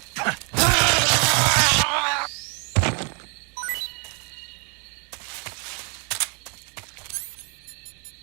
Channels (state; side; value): quieter; left; 37.0 dB